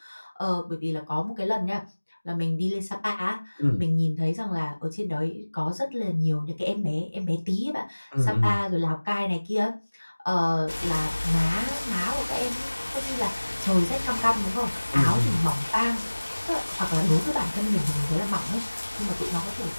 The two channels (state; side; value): inverted; both; correlation -1.00